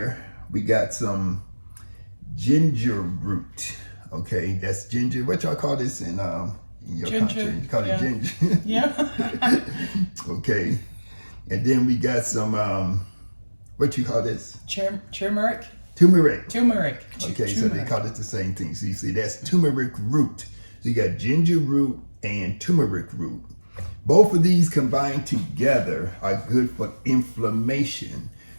we got some ginger root. Okay, that's ginger. What y'all call this in your country? You call it ginger. Yeah. Okay, and then we got some what you call this? Turmeric. Turmeric. Turmeric. Okay, so they call it the same thing. So you see, that's turmeric root. So you got ginger root and turmeric root. Both of these combined together are good for inflammation.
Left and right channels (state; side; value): inverted; both; correlation -1.00